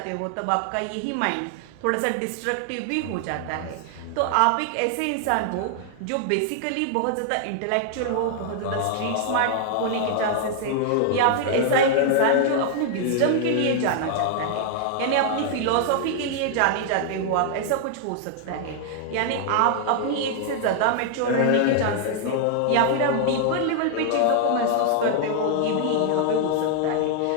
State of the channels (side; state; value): both; different; correlation 0.00